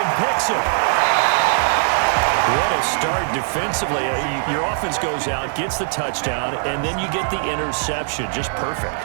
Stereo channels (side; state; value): left; silent; digital silence